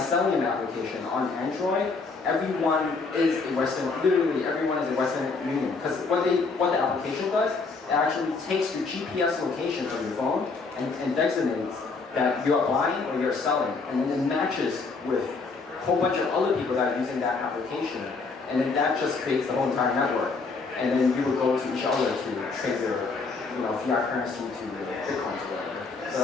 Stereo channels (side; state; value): right; quieter; 4.3 dB